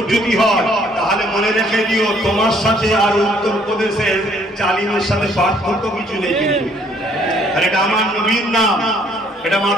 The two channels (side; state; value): both; normal; correlation 0.63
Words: হয়, তাহলে মনে রেখে দিও তোমার সাথে আর উত্তরপ্রদেশের জালিমের সাথে পার্থক্য কিছু নেই। কিন্তু আর এটা আমার নবীর নাম, এটা